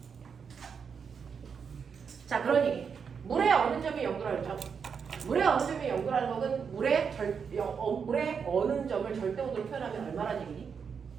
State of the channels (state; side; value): quieter; left; 6.4 dB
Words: 자, 그러니 물의 어느 점이 0도라 그랬죠? 물의 어느 점이 0도라는 것은 물의 어느 점을 절대 온도로 표현하면 얼마나 얘기니?